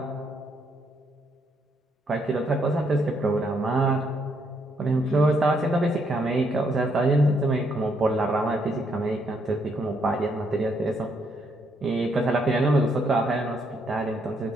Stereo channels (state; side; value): normal; both; correlation 0.74